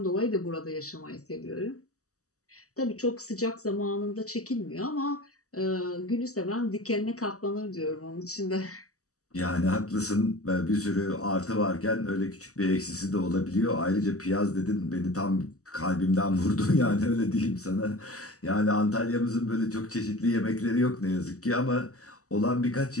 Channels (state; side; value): late; right; 0.66 ms